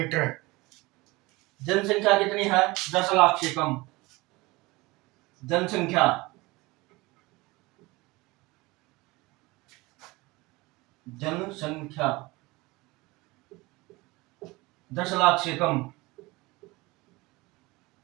जनसंख्या कितनी है? 10 लाख से कम जनसंख्या। जनसंख्या 10 लाख से कम,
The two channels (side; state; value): left; quieter; 22.3 dB